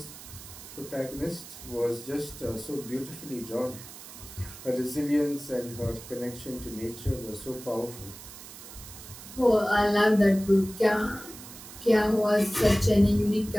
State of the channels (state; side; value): noise; right; hiss, 15 dB below the sound